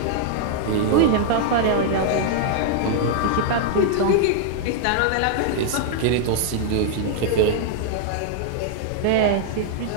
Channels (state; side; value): different; both; correlation -0.01